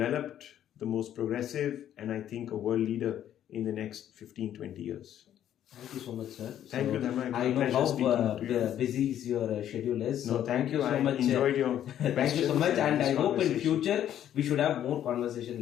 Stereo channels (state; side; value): quieter; right; 10.9 dB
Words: the most progressive, and I think a world leader in the next 15-20 years. Thank you so much, sir. Thank you, Dharma. I know how busy your schedule is. No, thank you so much. Enjoyed your thank you so much, and I hope in future we should have more conversation